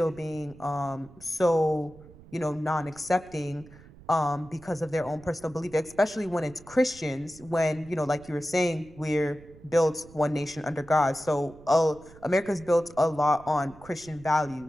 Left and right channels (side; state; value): right; noise; rumble, 21 dB below the sound